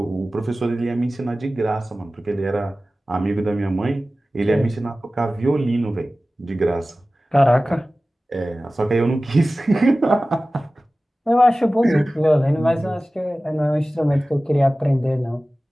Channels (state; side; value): normal; both; correlation 0.96